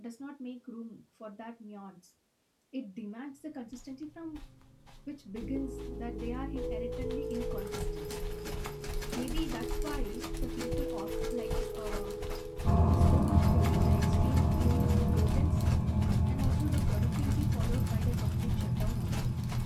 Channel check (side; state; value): both; identical; correlation 1.00